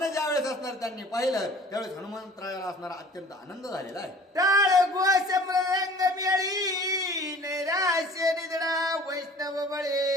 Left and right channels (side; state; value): both; normal; correlation 0.47